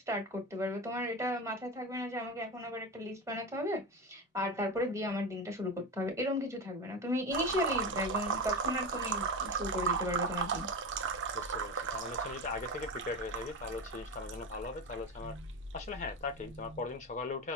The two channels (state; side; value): normal; both; correlation 0.23